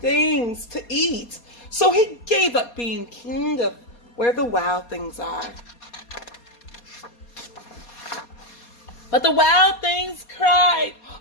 to eat. So he gave up being king of where the wild things are. But the wild things cried,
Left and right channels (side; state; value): right; late; 4.2 ms